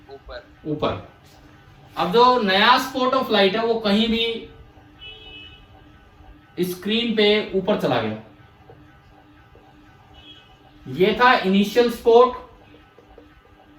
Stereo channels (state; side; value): identical; both; correlation 1.00